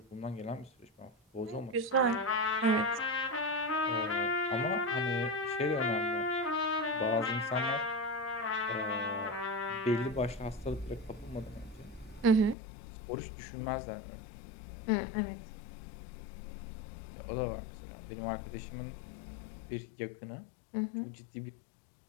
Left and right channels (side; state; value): right; drops out; at 12.6 s